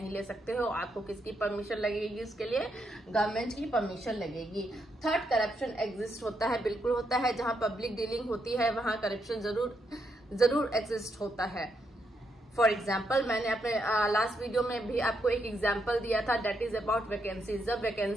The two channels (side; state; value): both; normal; correlation 0.79